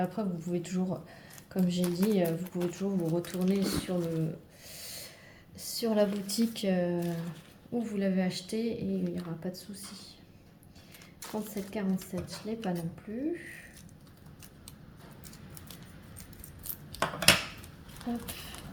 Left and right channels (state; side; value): identical; both; correlation 1.00